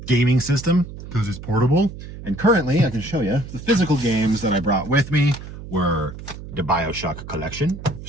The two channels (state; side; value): noise; right; hum, 12 dB below the sound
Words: gaming system because it's portable. And currently, I can show you, the physical games that I brought with me were the BioShock Collection,